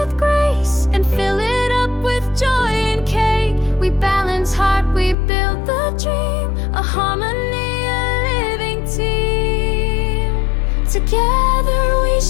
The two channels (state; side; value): drops out; right; at 5.2 s